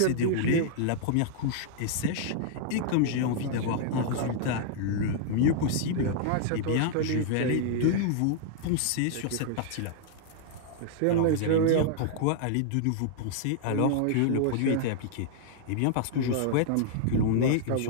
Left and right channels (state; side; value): different; both; correlation -0.01